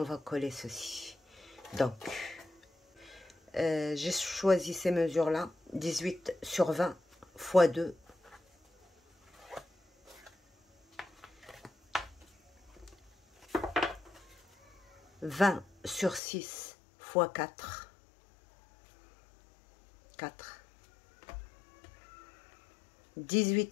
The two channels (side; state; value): right; drops out; at 16.2 s